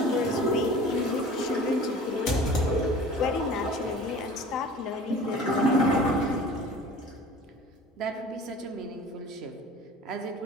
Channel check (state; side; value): normal; both; correlation 0.43